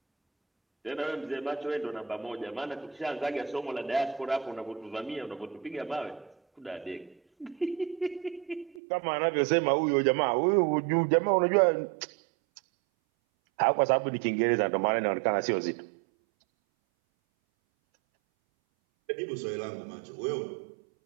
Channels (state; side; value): drops out; left; at 8.8 s